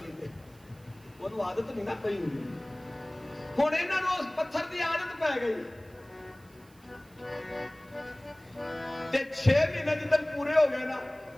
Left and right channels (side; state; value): right; noise; hiss, 29 dB below the sound